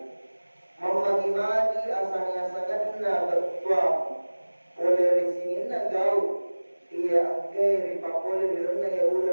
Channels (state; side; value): inverted; both; correlation -1.00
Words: Mamagi-magi asalnya sangatna bertuah oleh risinina gau. Ia angkai ripapole dirana ya